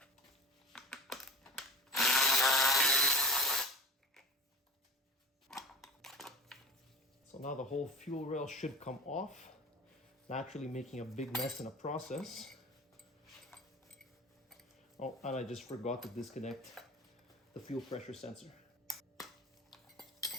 So now the whole fuel rail should come off, naturally making a big mess in the process. Oh, and I just forgot to disconnect the fuel pressure sensor.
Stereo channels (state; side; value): normal; both; correlation 0.34